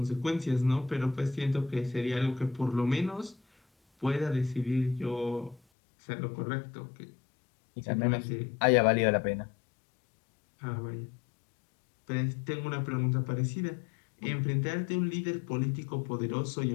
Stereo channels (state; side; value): drops out; right; at 5.6 s